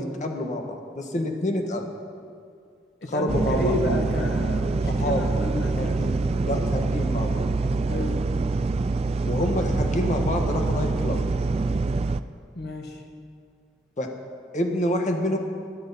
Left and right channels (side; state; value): both; normal; correlation 0.73